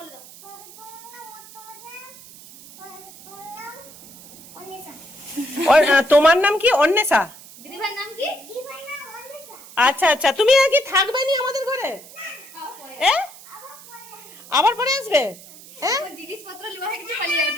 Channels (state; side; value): noise; right; hiss, 19 dB below the sound